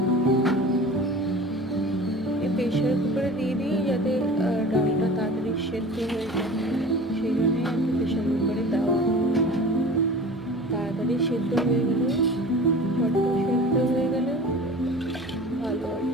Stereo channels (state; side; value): normal; both; correlation 0.39